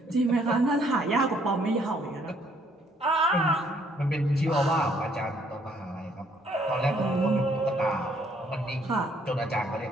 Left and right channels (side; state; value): both; normal; correlation 0.66